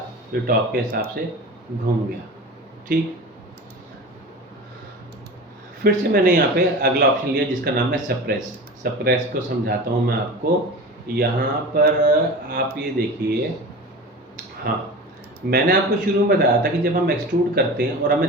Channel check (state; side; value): normal; both; correlation 0.33